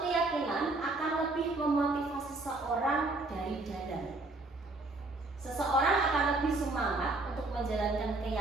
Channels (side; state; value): left; quieter; 3.0 dB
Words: keyakinan akan lebih memotivasi seseorang dari dalam. Seseorang akan lebih semangat untuk menjalankan